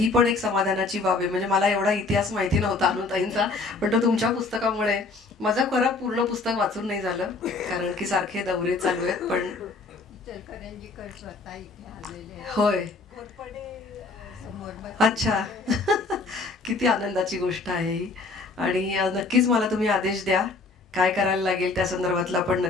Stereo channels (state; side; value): quieter; right; 3.8 dB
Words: पण एक समाधानाची बाब आहे. म्हणजे मला एवढा इतिहास माहिती नव्हता अनुताईंचा, पण तो तुमच्या पुस्तकामुळे माझं खरं पूर्ण पुस्तक वाचून नाही झालं कारण की सारखे दौरे चालू आहेत. पण होय, अच्छा किती आनंदाची गोष्ट आहे ही. आणि नक्कीच मला तुम्ही आदेश द्या काय करायला लागेल त्या संदर्भातलं आपण